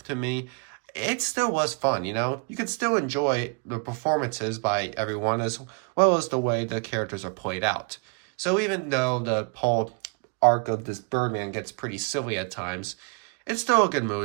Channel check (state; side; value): quieter; left; 34.2 dB